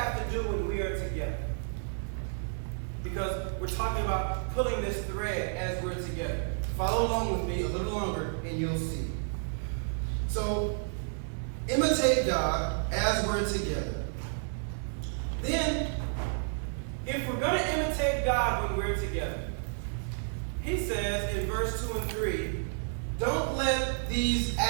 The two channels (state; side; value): silent; left; 57 dB below the other